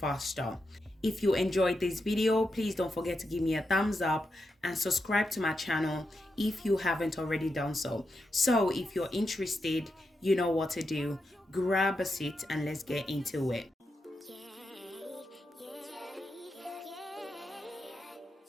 If you enjoyed this video, please don't forget to give me a thumbs up and subscribe to my channel if you haven't already done so. So if you're interested, you know what to do. Grab a seat and let's get into it.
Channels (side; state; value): both; normal; correlation 0.86